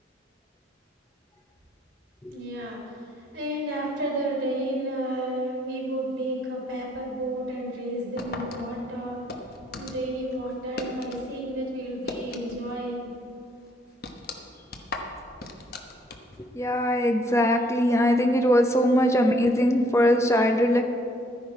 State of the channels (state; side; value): normal; both; correlation 0.66